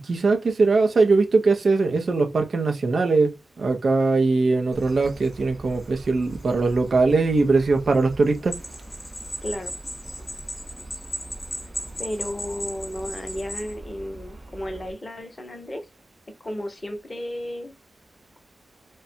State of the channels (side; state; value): left; quieter; 3.1 dB